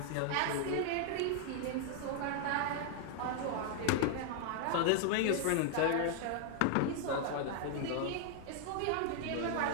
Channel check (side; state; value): both; different; correlation 0.00